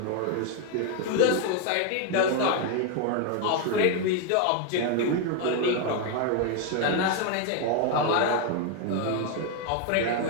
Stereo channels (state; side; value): different; both; correlation 0.01